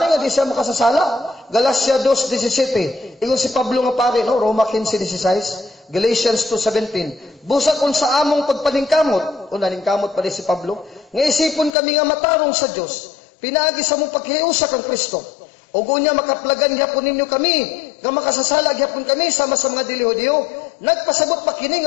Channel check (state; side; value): drops out; right; at 11.7 s